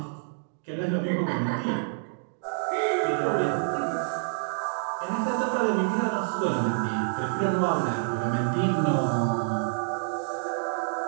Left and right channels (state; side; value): silent; left; digital silence